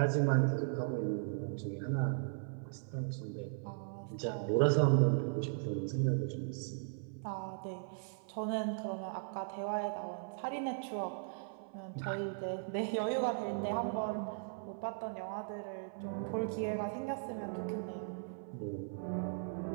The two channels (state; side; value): silent; left; 53 dB below the other